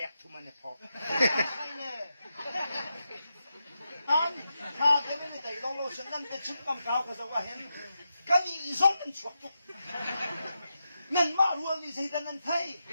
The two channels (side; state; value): both; inverted; correlation -0.87